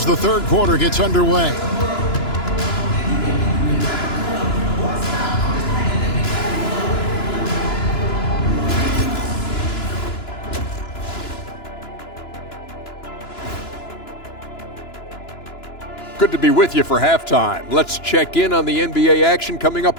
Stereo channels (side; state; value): right; late; 2.9 ms